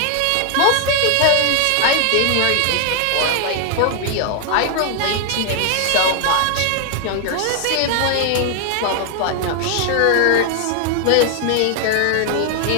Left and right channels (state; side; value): different; both; correlation 0.00